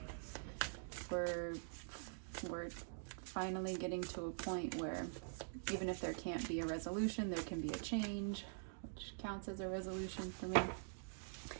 we're finally getting to a point where even if there can't be a resolution, there can be a change, which counts as a resolution for me.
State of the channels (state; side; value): silent; left; digital silence